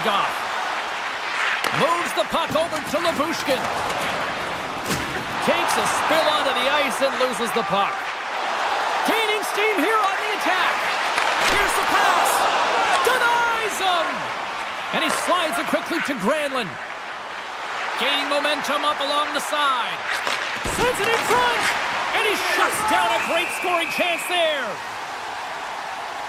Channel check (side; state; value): both; identical; correlation 1.00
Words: off. Moves the puck over to Labushkin. Takes a spill onto the ice and loses the puck. Gaining steam here on the attack. Here's the pass. Denies him. And he slides it quickly to Granlund. Gaining momentum up along the side. Sends it in front. And he shuts down a great scoring chance there.